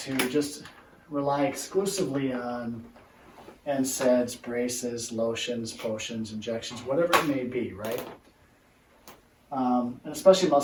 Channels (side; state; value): both; identical; correlation 1.00